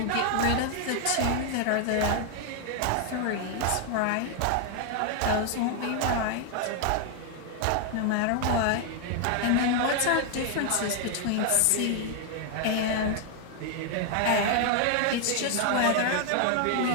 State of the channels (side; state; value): both; different; correlation 0.00